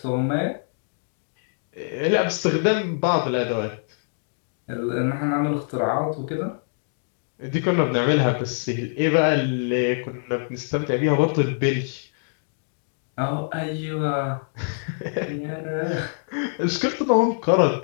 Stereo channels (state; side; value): silent; right; digital silence